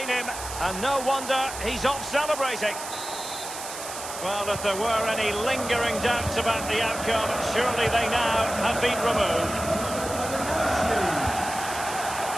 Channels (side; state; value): right; noise; hiss, 9 dB below the sound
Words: him. And no wonder he's off celebrating. Well, if there were any lingering doubts about the outcome, surely they now have been removed.